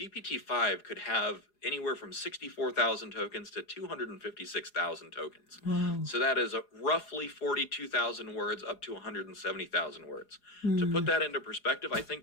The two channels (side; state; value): right; late; 4.8 ms